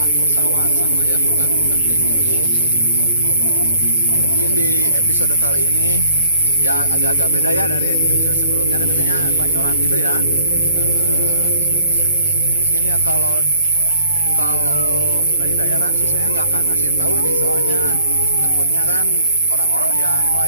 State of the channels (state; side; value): inverted; both; correlation -0.59